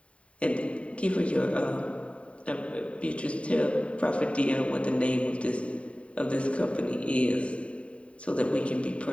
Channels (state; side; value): late; right; 0.063 ms